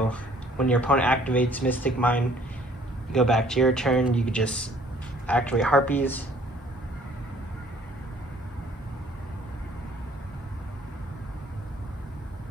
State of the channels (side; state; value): both; normal; correlation 0.57